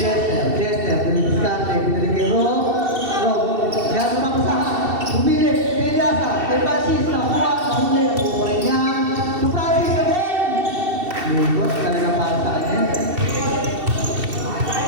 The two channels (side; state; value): left; late; 2.7 ms